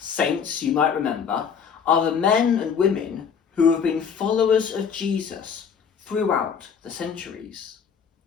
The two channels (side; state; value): right; quieter; 6.8 dB